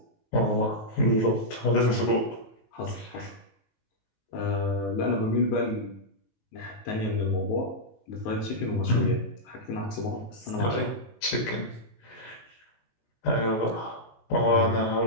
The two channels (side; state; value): right; late; 19 ms